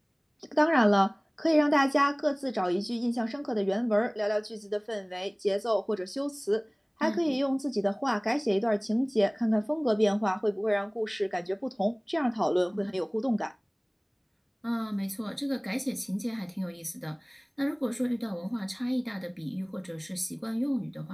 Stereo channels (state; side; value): identical; both; correlation 1.00